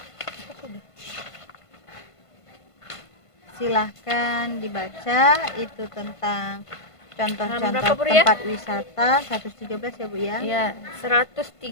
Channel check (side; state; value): right; late; 1.5 ms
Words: silahkan dibaca itu tentang Berapa, contoh-contoh Bu Ria? tempat wisata 113 ya Bu ya. Ya,